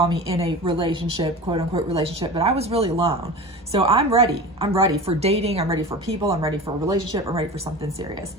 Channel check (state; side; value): normal; both; correlation 0.32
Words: me in a relationship, quote unquote relationship, but I was really alone. So I'm ready. I'm ready for dating. I'm ready for people. I'm ready for a relationship. I'm ready for something serious.